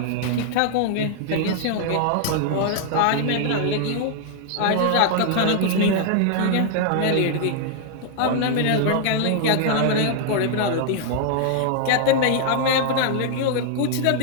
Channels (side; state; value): both; different; correlation -0.01